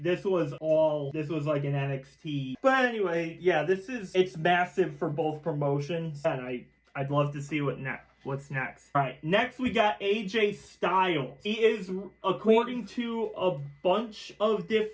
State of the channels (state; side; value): identical; both; correlation 1.00